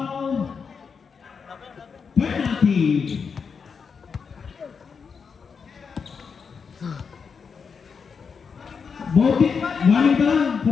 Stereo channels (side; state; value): right; quieter; 5.9 dB